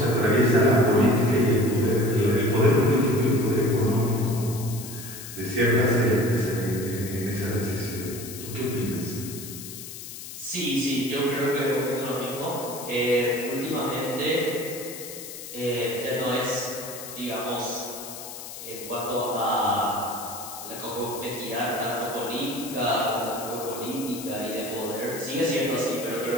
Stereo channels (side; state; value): left; noise; hiss, 11 dB below the sound